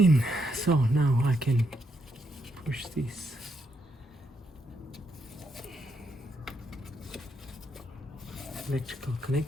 so now I can push this electrical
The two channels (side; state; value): both; normal; correlation 0.78